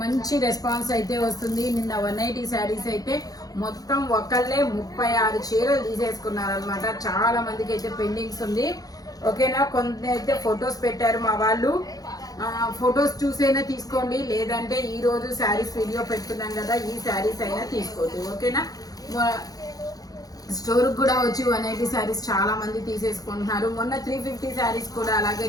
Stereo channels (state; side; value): late; right; 0.18 ms